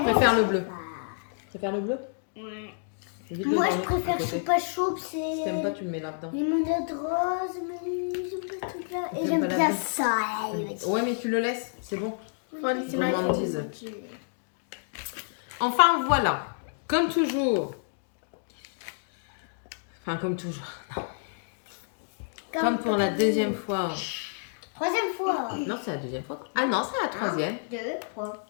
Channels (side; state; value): right; silent; digital silence